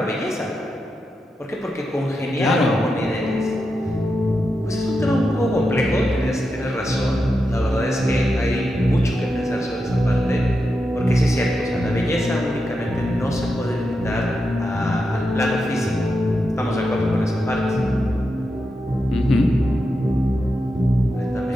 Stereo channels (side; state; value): both; normal; correlation 0.88